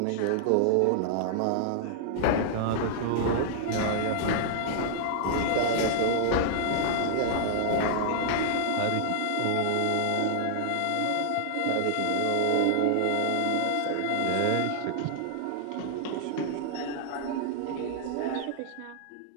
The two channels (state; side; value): different; both; correlation -0.01